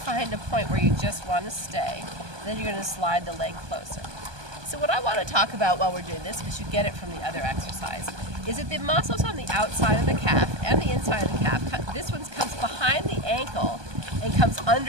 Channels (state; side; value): late; left; 1.2 ms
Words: a point where you just want to stay. Then you're going to slide the leg closer. So what I want to talk about while we're doing this, because you get it from the other exercise, is that the muscles on the outside of the calf and the inside of the calf, this one comes behind the ankle and comes